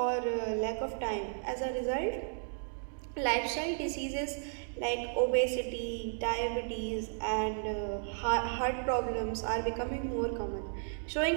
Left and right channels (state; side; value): silent; left; digital silence